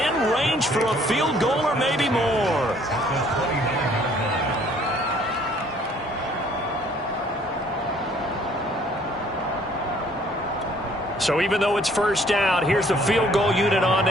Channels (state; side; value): normal; both; correlation 0.59